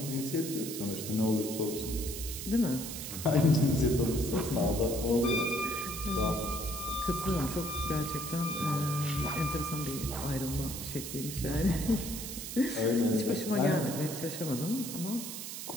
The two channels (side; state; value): right; noise; hiss, 7 dB below the sound